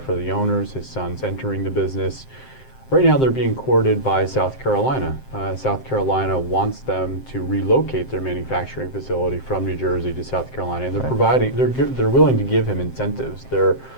are the owners. His son's entering the business. Right now they're being courted by South Carolina. South Carolina wants them to relocate their manufacturing facility from New Jersey to South Carolina, and they're willing to give him incentives. They're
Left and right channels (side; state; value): right; late; 7.6 ms